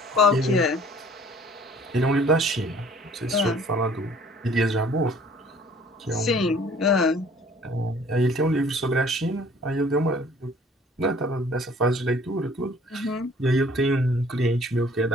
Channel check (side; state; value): both; normal; correlation 0.54